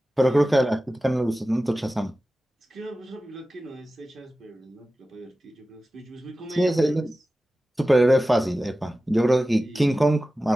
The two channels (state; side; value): normal; both; correlation 0.95